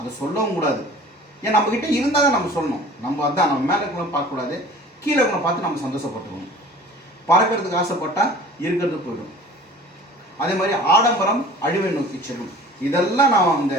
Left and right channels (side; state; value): both; normal; correlation 0.45